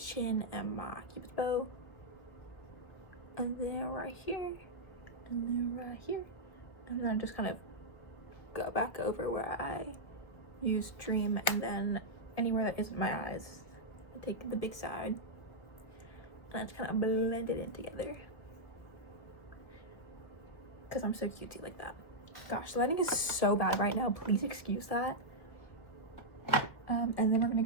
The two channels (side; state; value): right; late; 1.5 ms